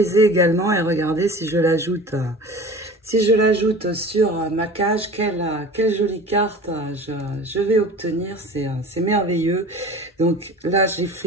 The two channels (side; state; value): both; normal; correlation 0.39